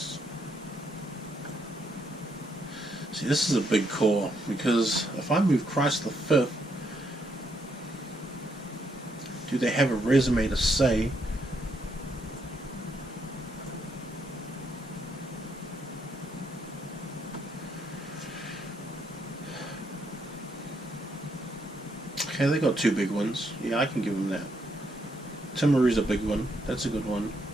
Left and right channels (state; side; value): normal; both; correlation 0.76